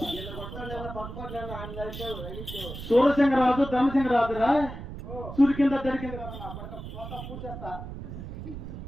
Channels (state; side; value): noise; right; rumble, 10 dB below the sound